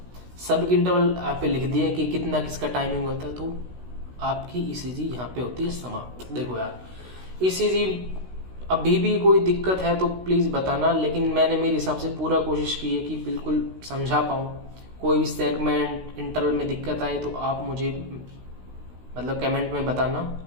सब इंटरवल आप लिख दिए कि कितना किसका टाइमिंग होता है, तो आपकी ईसीजी यहाँ पे होती है समाप्त। देखो यार, ईसीजी अभी भी कोई दिक्कत है तो प्लीज़ बताना, लेकिन मैंने मेरे हिसाब से पूरा कोशिश की है कि बिल्कुल समझा पाऊँ। कोई भी सेगमेंट इंटरवल में दिक्कत आए तो आप मुझे मतलब कमेंट में बताना,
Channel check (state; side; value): late; left; 16 ms